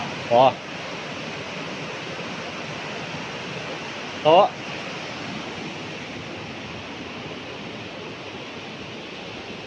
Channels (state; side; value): identical; both; correlation 1.00